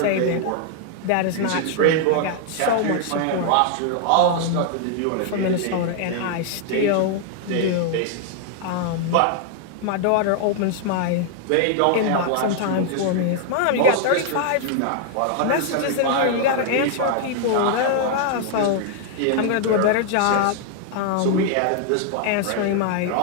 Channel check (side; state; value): both; different; correlation 0.00